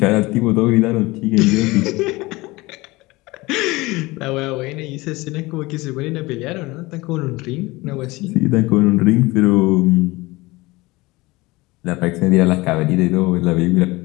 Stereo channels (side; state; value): right; quieter; 21.7 dB